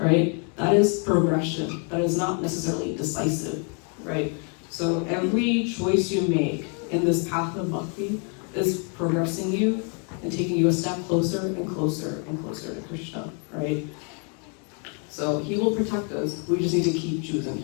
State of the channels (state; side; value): quieter; right; 39.0 dB